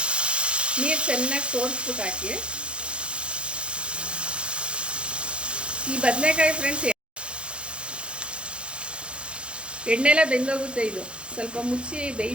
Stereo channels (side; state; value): left; late; 0.057 ms